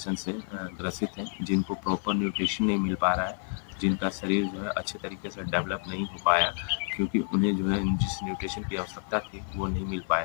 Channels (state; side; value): silent; right; digital silence